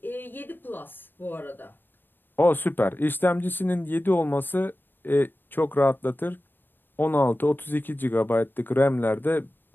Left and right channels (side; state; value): right; late; 0.094 ms